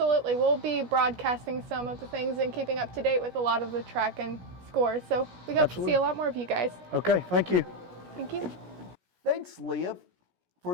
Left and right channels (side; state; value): left; late; 17 ms